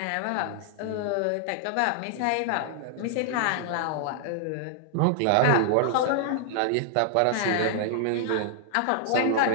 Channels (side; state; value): both; different; correlation -0.01